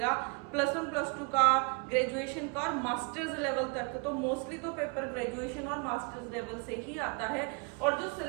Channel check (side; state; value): left; quieter; 33.3 dB